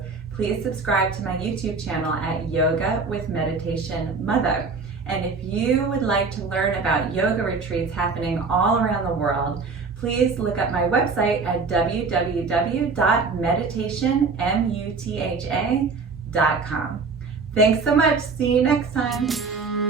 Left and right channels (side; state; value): left; quieter; 4.5 dB